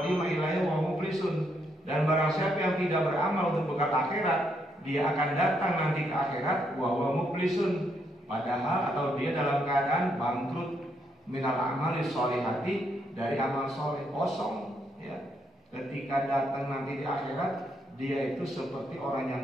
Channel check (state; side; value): normal; both; correlation 0.76